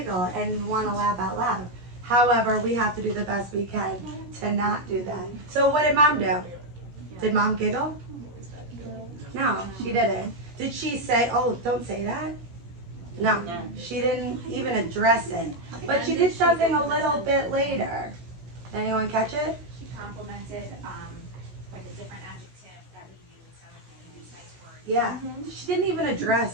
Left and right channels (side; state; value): left; late; 17 ms